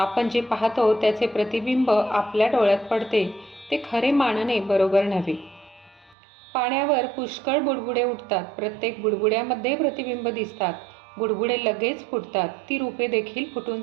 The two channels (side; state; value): left; drops out; at 6.2 s